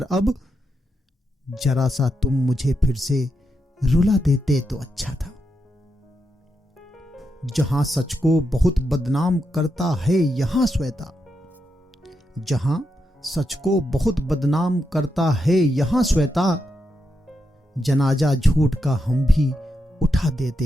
अब, जरा सा तुम मुझे फिर से रुला देते तो अच्छा था। जहां सच को बहुत बदनाम करता है यहां श्वेता, जहां सच को बहुत बदनाम करता है यहां श्वेता, जनाजा झूठ का हम भी उठा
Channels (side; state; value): both; normal; correlation 0.85